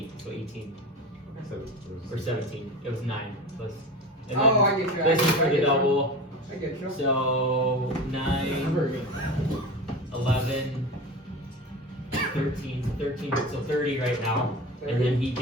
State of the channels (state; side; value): normal; both; correlation 0.29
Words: so 18 or 17. It was 9 plus. And Oh, I get you. This is for the double. I get you. So 9, 11, 13, 13, so 30 right now. And then he